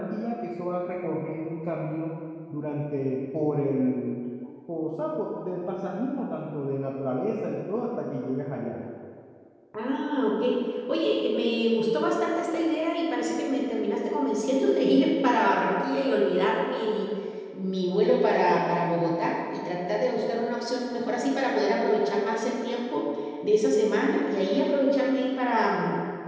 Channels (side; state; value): both; identical; correlation 1.00